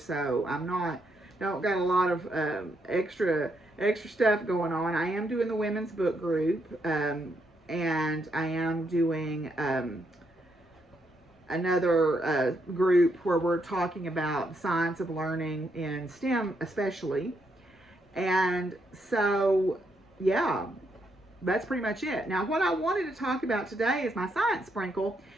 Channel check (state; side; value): normal; both; correlation 0.77